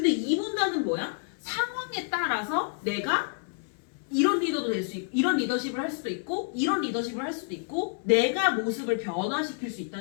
이 문단은 뭐야? 상황에 따라서 내가 이런 리더도 될 수 있고, 이런 리더십을 할 수도 있고, 이런 리더십을 할 수도 있고, 내가 모습을 변화시킬 수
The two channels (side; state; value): right; silent; 59 dB below the other